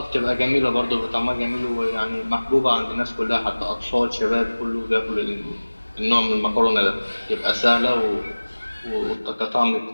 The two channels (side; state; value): both; inverted; correlation -1.00